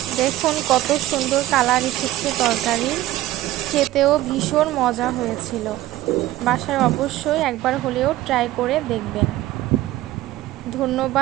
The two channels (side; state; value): left; quieter; 15.4 dB